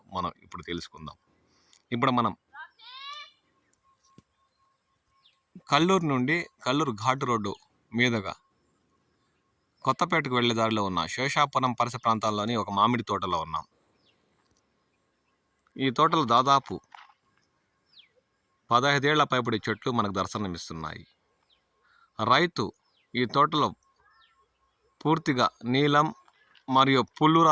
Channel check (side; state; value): both; identical; correlation 1.00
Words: మనం ఇప్పుడు తెలుసుకుందాం. ఇప్పుడు మనం కల్లూరు నుండి కల్లూరు ఘాటు రోడ్డు మీదుగా కొత్తపేటకు వెళ్లే దారిలో ఉన్న శేషాపురం పరిసర ప్రాంతాల్లోని ఒక మామిడి తోటలో ఉన్నాం. ఈ తోటలో దాదాపు 15 ఏళ్ల పైబడి చెట్లు మనకు దర్శనమిస్తున్నాయి. రైతు ఈ తోటలో పూర్తిగా నీలం మరియు పుల్లూర